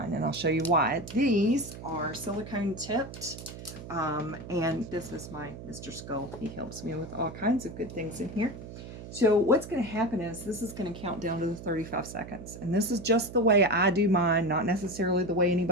and I'll show you why. These are silicone tipped, and this is my Mr. Skull. He helps me with all kinds of good things in here. So what's going to happen is this is going to count down to the 35 seconds, and this is just the way I do mine, not necessarily the way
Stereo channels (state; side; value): noise; right; hum, 12 dB below the sound